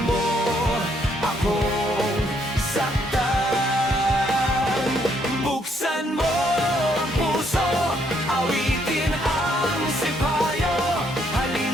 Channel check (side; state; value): both; normal; correlation 0.71